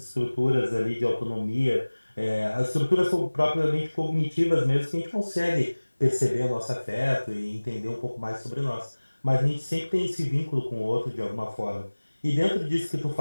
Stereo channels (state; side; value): inverted; both; correlation -1.00